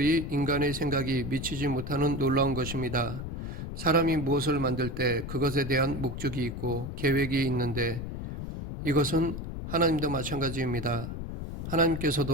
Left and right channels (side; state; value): left; noise; rumble, 7 dB below the sound